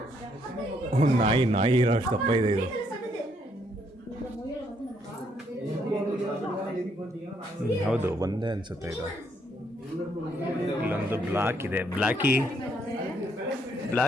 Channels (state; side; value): normal; both; correlation 0.71